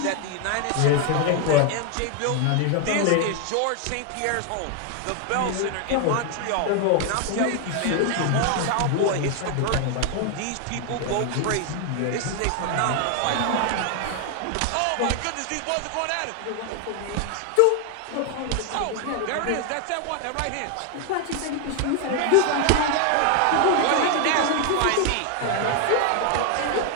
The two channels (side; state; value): both; different; correlation 0.00